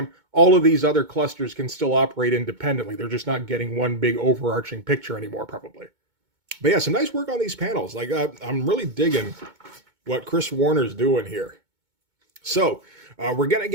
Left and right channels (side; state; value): left; late; 2.2 ms